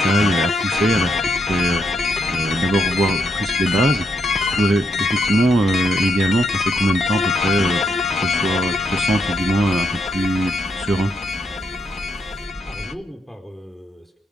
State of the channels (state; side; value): normal; both; correlation 0.78